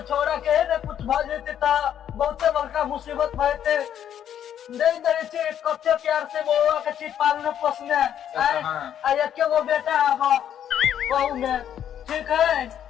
छोड़ा के है ना कुछ भ जेते त बहुते बड़का मुसीबत भइते। नहीं दे छी कते प्यार से बुआ के छी पालने पोसने, आ एक गो बेटा अब बहू में, ठीक है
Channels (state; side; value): quieter; right; 9.8 dB